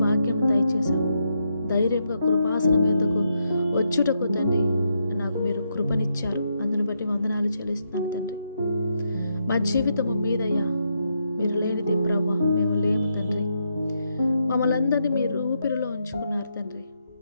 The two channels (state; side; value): inverted; both; correlation -0.80